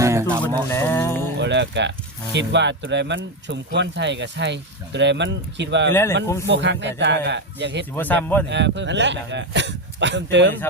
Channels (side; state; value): both; normal; correlation 0.11